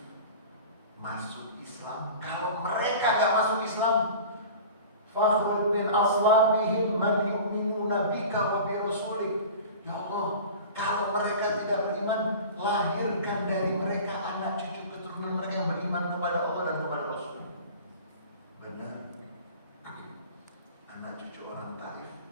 masuk Islam. Kalau mereka gak masuk Islam, fakhruj min aslabihim man yu'minuna bika wa bi rasulik. Ya Allah, kalau mereka tidak beriman, lahirkan dari mereka anak cucu keturunan mereka yang beriman kepada Allah dan kepada Rasul. Benar. Anak cucu orang Taif,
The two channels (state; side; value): inverted; both; correlation -0.39